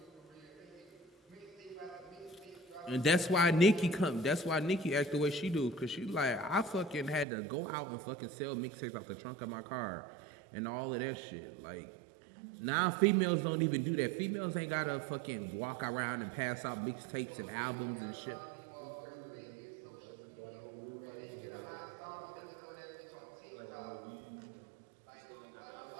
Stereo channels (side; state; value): left; drops out; at 7.2 s